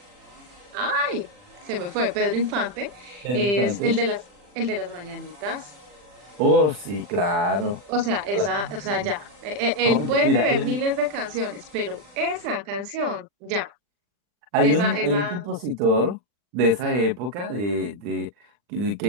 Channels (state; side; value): late; left; 40 ms